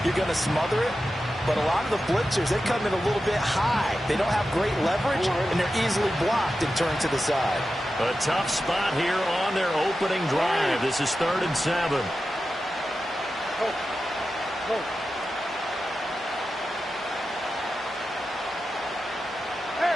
you're going to smother it. But a lot of the blitzers, they come in a little bit high. They don't have great leverage, and they're easily blocked and turned to the side. A tough spot here on their opening drive. This is 3rd and 7. Go. Go.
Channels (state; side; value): normal; both; correlation 0.92